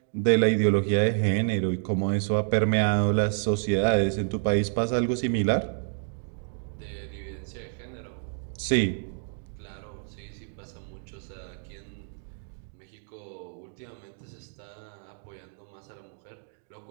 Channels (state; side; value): silent; left; 56 dB below the other